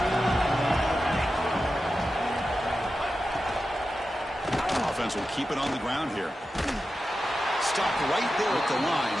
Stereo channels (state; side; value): normal; both; correlation 0.92